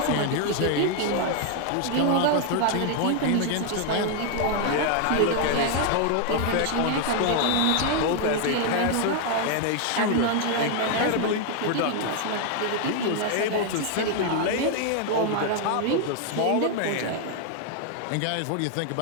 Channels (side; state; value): both; different; correlation 0.00